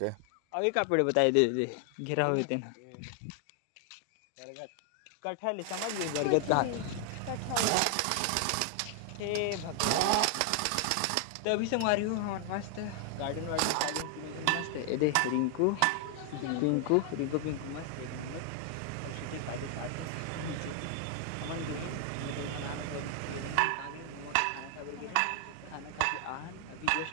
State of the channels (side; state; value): both; different; correlation 0.00